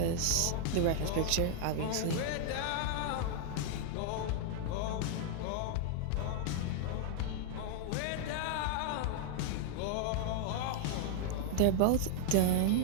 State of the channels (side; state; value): both; different; correlation 0.00